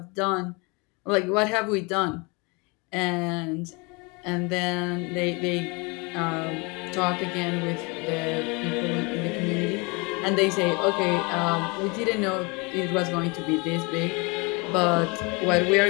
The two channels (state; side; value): quieter; right; 28.8 dB